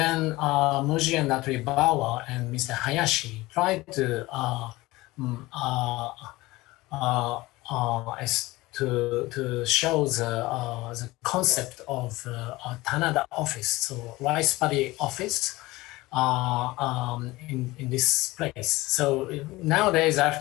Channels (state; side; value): quieter; right; 19.9 dB